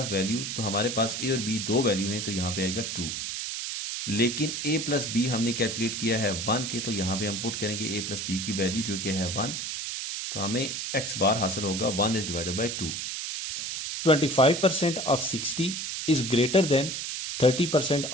वैल्यूज, तो हमारे पास ए और बी दो वैल्यू हैं तो यहां पे आएगा 2। लेकिन ए प्लस बी हमने कैलकुलेट किया है 1 के, तो यहां पे हम पुट करेंगे ए प्लस बी की वैल्यू जो कि है 1, तो हमें एक्स बार हासिल होगा 1 is divided bye 2। 25% of 60 is greater than 30%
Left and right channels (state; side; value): noise; right; hiss, 4 dB below the sound